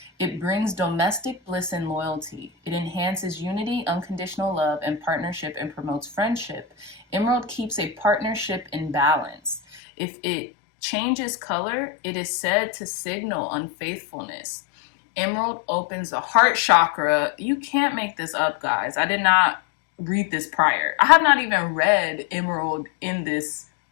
It brings domestic bliss and loyalty. It enhances unity, unconditional love, and partnership, and promotes friendship. Emerald keeps a partnership in balance. If it changes color, it is said to signal unfaithfulness. Emerald opens the heart chakra. You can't make this up, guys. I did not read this prior. I have not even read Emerald in this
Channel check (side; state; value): right; drops out; at 9.6 s